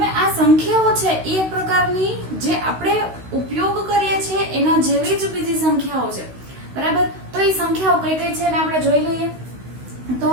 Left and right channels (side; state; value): left; late; 16 ms